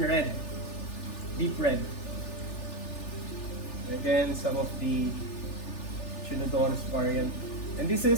red, deep red. Again, some of the Echinodorus variant. And this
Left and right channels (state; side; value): late; right; 3.4 ms